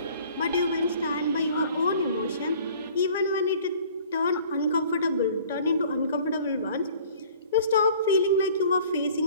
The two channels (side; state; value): both; inverted; correlation -0.51